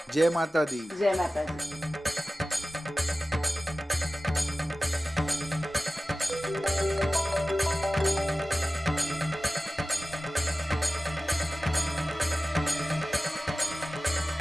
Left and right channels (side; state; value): both; normal; correlation 0.95